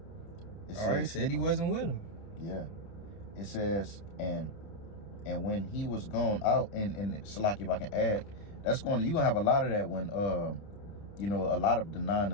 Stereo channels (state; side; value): late; right; 30 ms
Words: All right, said he wasn't with him. Yeah. It says, and when he was gone out, and Salaki, if I can add, you're gonna have a lot of that when a lot of denying